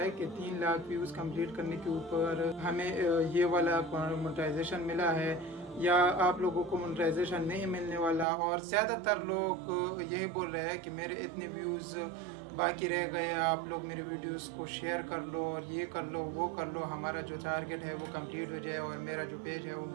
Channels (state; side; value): drops out; left; at 8.2 s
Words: कि 3 लाख व्यूज कंप्लीट करने के ऊपर हमें ये वाला मोनेटाइजेशन मिला है या आप लोगों को मोनेटाइजेशन नहीं मिलने वाला। और ज़्यादातर लोग यही बोल रहे हैं कि मेरे इतने व्यूज़ बाकी रह गए, आप लोग मेरे वीडियोस को शेयर कर लो और ये कर लो वो कर लो, हमारा जो टारगेट है वो कंप्लीट हो जाए और मेरा जो पेज है वो